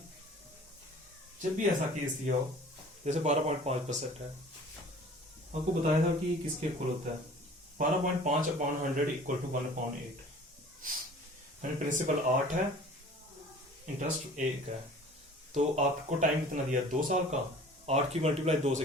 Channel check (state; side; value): normal; both; correlation 0.46